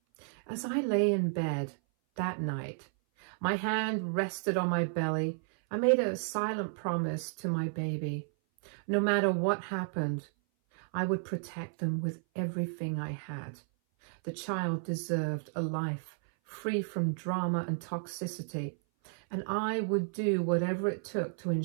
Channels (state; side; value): silent; left; 56 dB below the other